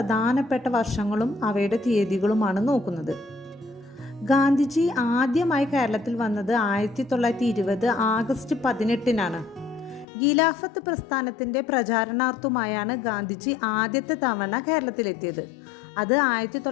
വർഷങ്ങളും അവയുടെ തീയതികളുമാണ് നോക്കുന്നത്. ഗാന്ധിജി ആദ്യമായി കേരളത്തിൽ വന്നത് 1920 ആഗസ്റ്റ് 18-നാണ്. ഖിലാഫത്ത് പ്രസ്ഥാനത്തിൻ്റെ പ്രചാരണാർത്ഥമായാണ് ഗാന്ധിജി ആദ്യത്തെ തവണ കേരളത്തിലെത്തിയത്. അത്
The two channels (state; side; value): drops out; right; at 10.1 s